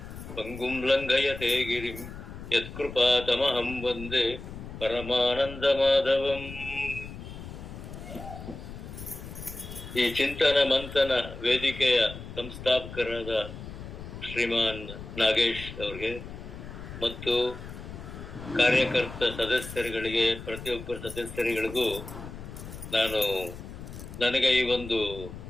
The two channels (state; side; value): noise; left; rumble, 12 dB below the sound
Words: ಪಂಗುಂ ಲಂಘಯತೆ ಗಿರಿಂ ಯತ್ಕೃಪಾತಮಹಂ ವಂದೇ ಪರಮಾನಂದಮಾಧವಂ. ಈ ಚಿಂತನ ಮಂಥನ ವೇದಿಕೆಯ ಸಂಸ್ಥಾಪಕರಾದ ಶ್ರೀಮಾನ್ ನಾಗೇಶ್ ಅವರಿಗೆ ಮತ್ತು ಕಾರ್ಯಕರ್ತ ಸದಸ್ಯರುಗಳಿಗೆ, ಪ್ರತಿಯೊಬ್ಬರ ಸದಸ್ಯರುಗಳಿಗೂ ನನಗೆ ಈ ಒಂದು